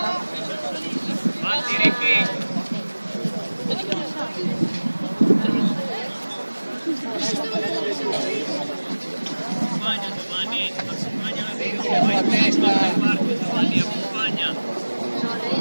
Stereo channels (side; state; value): both; inverted; correlation -1.00